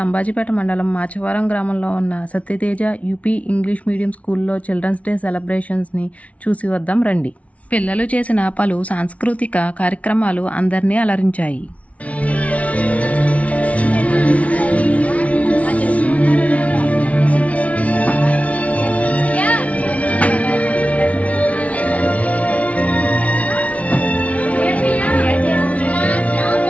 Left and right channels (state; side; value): late; right; 0.066 ms